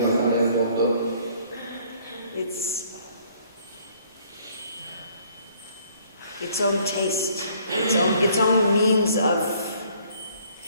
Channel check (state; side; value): inverted; both; correlation -0.61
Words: il mondo. Its own taste, its own means of,